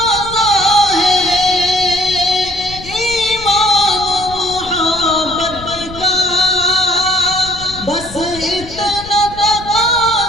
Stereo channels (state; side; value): noise; left; rumble, 15 dB below the sound